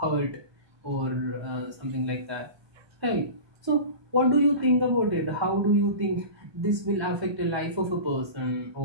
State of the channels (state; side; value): late; left; 1.2 ms